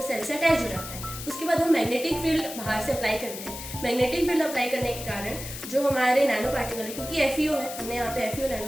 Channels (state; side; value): noise; left; hiss, 10 dB below the sound